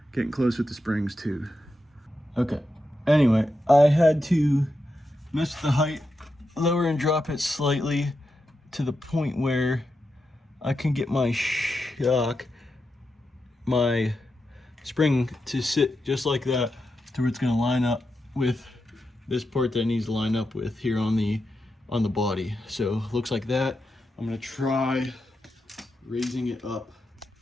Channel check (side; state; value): both; normal; correlation 0.87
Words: Getting close with the springs too. Okay, anyway, I had to mess with the height, lower and drop it slightly to the point where I can get my shock, my spring to sit just like that to where it's gonna line up with this part that it needs to line up with here on the body. So looks like that. I'm gonna try raising it up